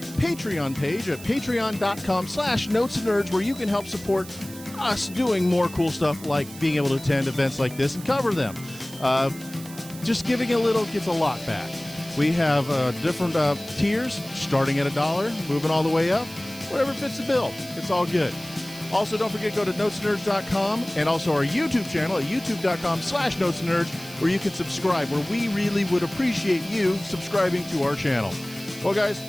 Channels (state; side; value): noise; right; hiss, 16 dB below the sound